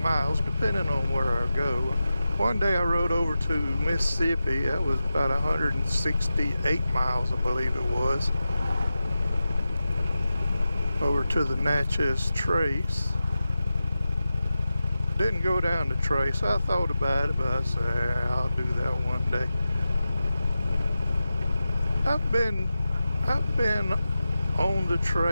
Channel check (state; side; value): inverted; both; correlation -0.92